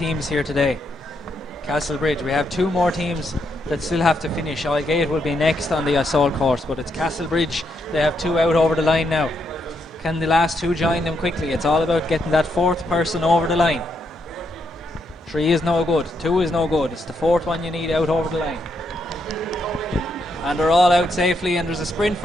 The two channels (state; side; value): normal; both; correlation 0.79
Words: here today. Castlebridge, we have 2 more teams that still have to finish. Aldgate will be next on the assault course, but it's Castlebridge. They have 2 out over the line now. Can the last 2 join them quickly? It's all about getting that 4th person over the line. 3 is no good, 2 is no good. It's the 4th one you need out over the line. And they're all out safely, and there's a sprint